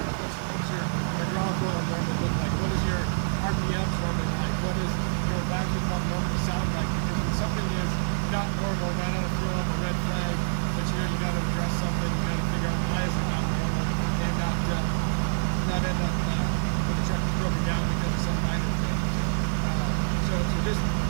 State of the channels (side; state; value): left; silent; 60 dB below the other